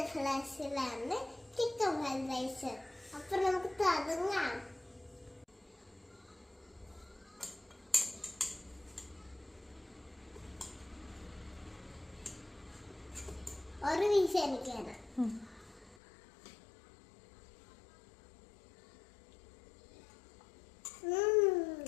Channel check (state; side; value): drops out; right; at 16.0 s